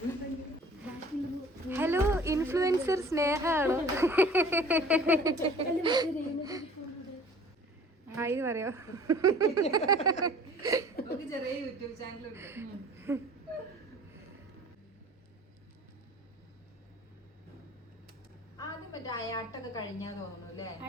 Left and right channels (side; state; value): both; normal; correlation 0.48